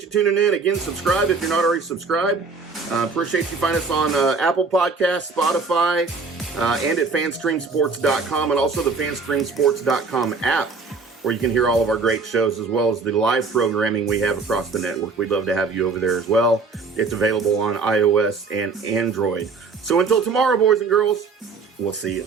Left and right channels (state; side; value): quieter; left; 4.4 dB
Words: you tuning in. Again, subscribe if you're not already subscribed. Appreciate you find us on Apple Podcasts, Spotify, and at fanstreamsports.com, and also the fanstreamsports.com app, where you can hear all of our great shows as well as the live programming we have across the network. We'd love to have you over there as well. It's available on iOS and Android. So until tomorrow, boys and girls, we'll see you.